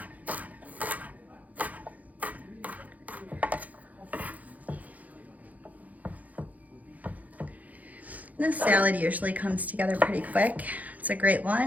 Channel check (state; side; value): late; left; 0.077 ms